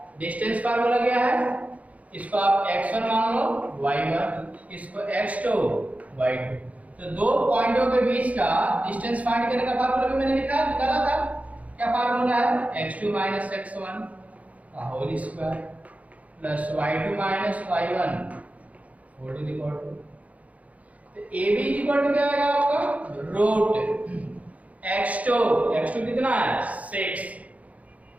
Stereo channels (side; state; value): left; late; 0.069 ms